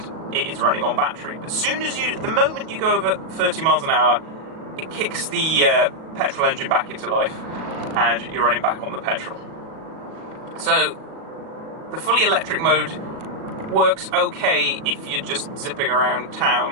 it is running on battery, but the moment you go over 30 miles an hour, it kicks the petrol engine back into life and you're running back on the petrol. So the fully electric mode works okay if you're just zipping around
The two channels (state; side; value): late; left; 37 ms